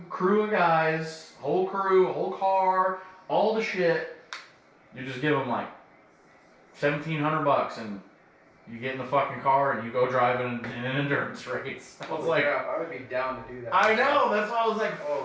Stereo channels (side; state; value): both; identical; correlation 1.00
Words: crew of guys, whole crew, whole car, all the shit. You just give them like $1,700 and you get in the fucking car and you go drive in an endurance race. I was Holy like, crap, I would be down to do that. I know, that's why I was like, Oh,